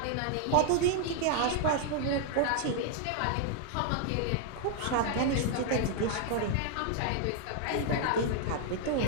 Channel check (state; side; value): different; both; correlation 0.00